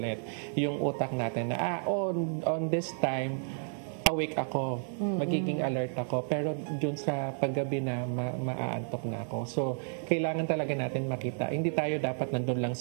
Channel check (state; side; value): silent; left; 57 dB below the other